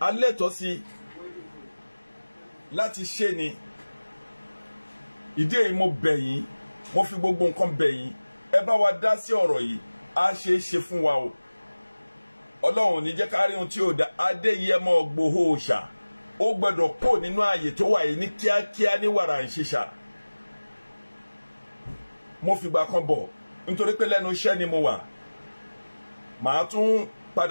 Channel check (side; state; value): both; inverted; correlation -1.00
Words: a lẹ́tọ̀ọ́ sí láti ṣe ni. Ìdí èyí mo bẹ̀ yín, mo fi gbogbo nǹkan bẹ̀ yín, ẹ bá wa dá sí ọ̀rọ̀ yìí, á ṣe é ṣe fún wa o. Ọlọ́run ní jẹ́ ká rí ohun tí ó dá. Adéyẹmọ Ìgbòho Òòṣà ó gbọ́dọ̀ kó nínú ààyè tó wà yìí ní kíákíá ní wàrà ìṣiṣà. Mo fìgbà kan bọ̀ nítorí pé lẹ́nu iṣẹ́ ni mo wà. Màá tún